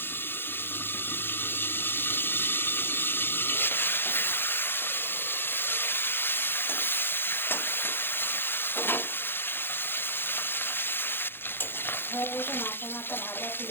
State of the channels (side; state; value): right; late; 0.10 ms